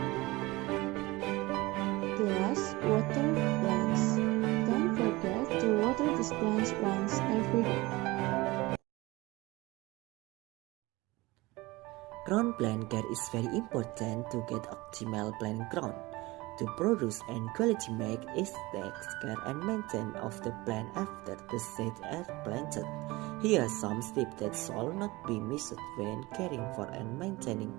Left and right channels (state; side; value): quieter; left; 21.4 dB